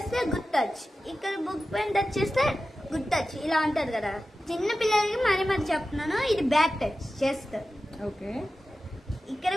గుడ్ టచ్, ఇక్కడ బుక్ పైన టచ్ చేస్తే గుడ్ టచ్, ఇలా ఉంటుంది కదా. చిన్న పిల్లలకి మరి చెప్తున్నాను, ఇది బ్యాడ్ టచ్ చేస్తారు. ఓకే, ఇక్కడ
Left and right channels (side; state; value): both; normal; correlation 0.94